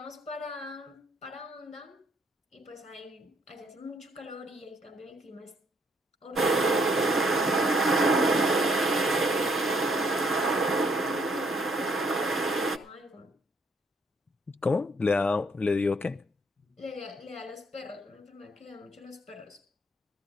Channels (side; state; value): both; normal; correlation 0.68